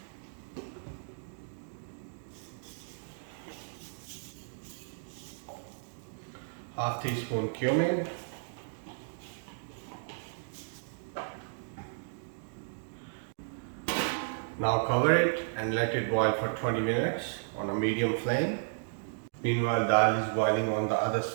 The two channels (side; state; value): left; silent; digital silence